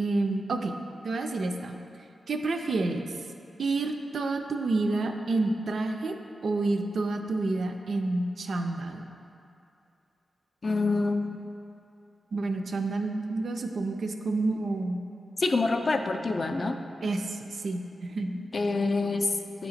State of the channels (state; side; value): normal; both; correlation 0.89